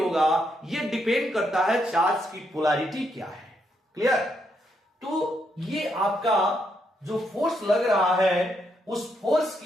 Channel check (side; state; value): both; normal; correlation 0.77